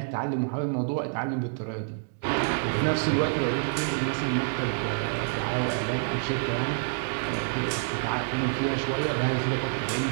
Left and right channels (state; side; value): silent; left; digital silence